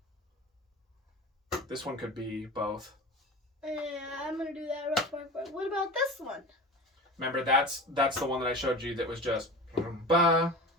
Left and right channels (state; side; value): normal; both; correlation 0.33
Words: This one could be both. yeah, I'm gonna do that rough bark. But what about this one? Remember, that's the one that I showed you that was just ba.